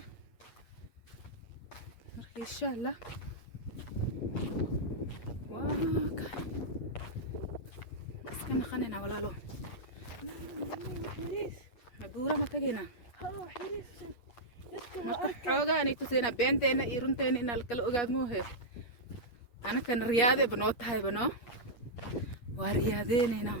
مرخي إن شاء الله واكا بس كنا خانينا ولا لو بورة ما تجينا marka xoogaa ay tusayna beenteena iyo runteena in la kala ogaad moohe anakan riyaade banoo tahay bano waa riyaadeena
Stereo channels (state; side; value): late; right; 8.5 ms